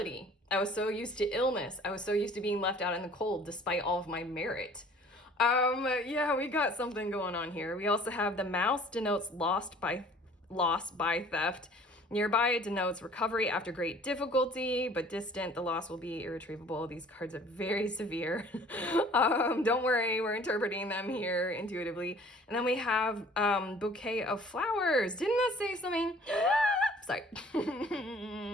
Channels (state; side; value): normal; both; correlation 0.52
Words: I was so used to illness. I was so used to being left out in the cold despite all of my merit. Yeah, we got something going on here. We also have the Mouse denotes loss by theft. Nearby it denotes recovery after great difficulty, but distant, the loss will be irretrievable. These cards are very severe. Don't worry, we're interpreting them here intuitively. And then we have Bouquet of Flowers. Didn't that say something? Sorry.